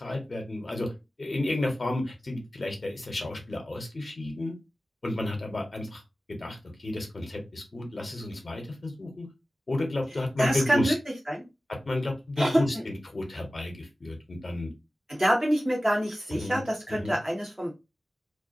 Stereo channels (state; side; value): normal; both; correlation 0.96